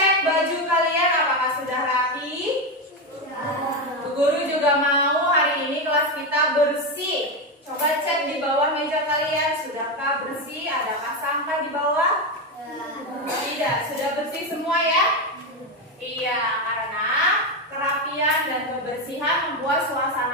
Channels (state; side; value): normal; both; correlation 0.11